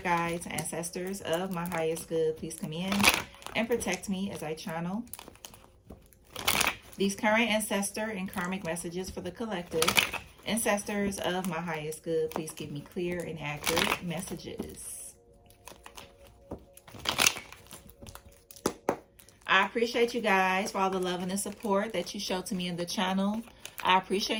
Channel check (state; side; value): identical; both; correlation 1.00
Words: guides, ancestors of my highest good, please come in and protect me as I channel these current ancestor and karmic messages for the collective. Ancestors of my highest good, please give me clear and accurate messages. I appreciate you guys for all the love and the support that you show to me in the channel. I